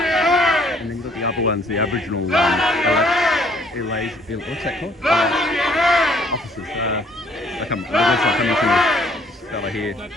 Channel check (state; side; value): normal; both; correlation 0.61